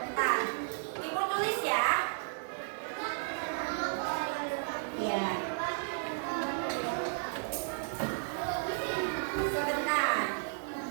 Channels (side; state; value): left; silent; digital silence